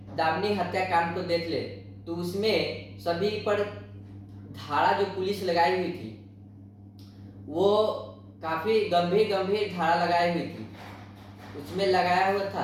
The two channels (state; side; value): identical; both; correlation 1.00